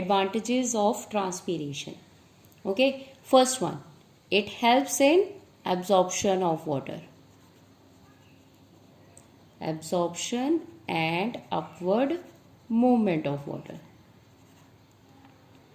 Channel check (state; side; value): identical; both; correlation 1.00